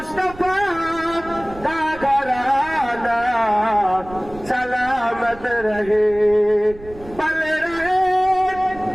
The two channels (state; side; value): noise; right; rumble, 18 dB below the sound